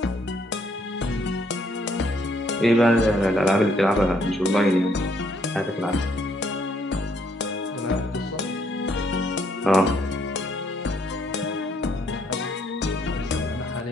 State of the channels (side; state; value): both; normal; correlation 0.69